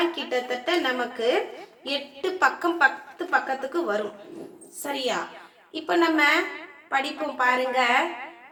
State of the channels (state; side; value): identical; both; correlation 1.00